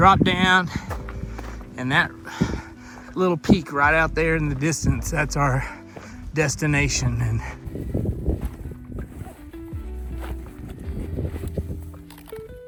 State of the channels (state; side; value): identical; both; correlation 1.00